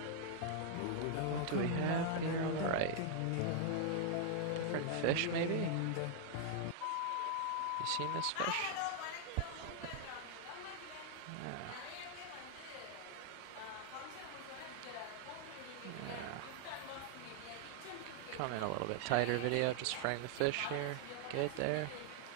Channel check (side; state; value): both; different; correlation 0.00